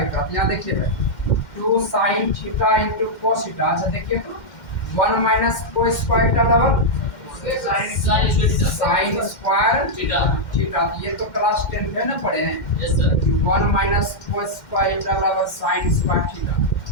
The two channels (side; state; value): right; late; 2.1 ms